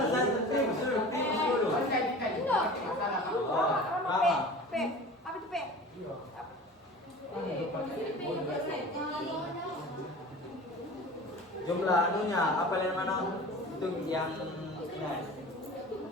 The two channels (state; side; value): normal; both; correlation 0.38